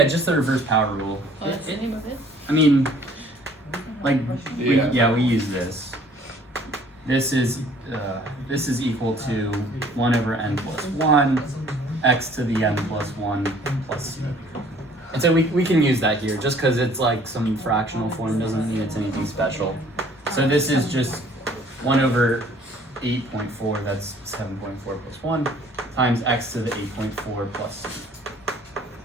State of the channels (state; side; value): normal; both; correlation 0.56